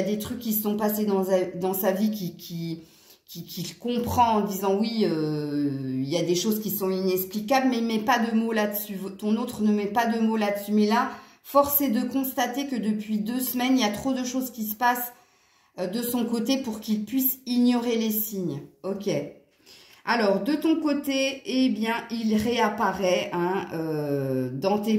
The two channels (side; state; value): both; identical; correlation 1.00